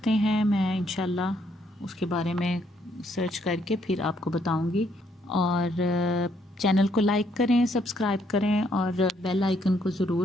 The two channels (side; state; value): both; normal; correlation 0.71